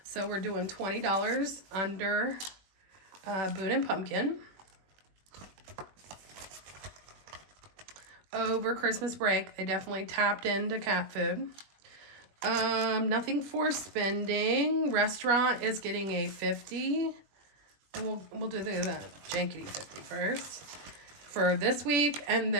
So we're doing $20 under Boone and Pumpkin. Over Christmas break, they definitely tapped into cat food. Nothing for spending. Restaurant is getting a 50. And we'll do the jankety 50 first for this week, and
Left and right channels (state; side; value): late; left; 21 ms